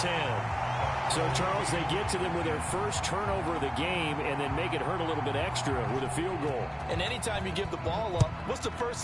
So, Charles, they get to them with their first turnover of the game and then make it hurt a little bit extra with a field goal. And anytime you give the ball up, what's the first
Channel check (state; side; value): identical; both; correlation 1.00